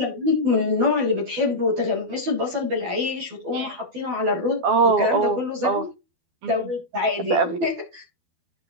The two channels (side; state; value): left; late; 12 ms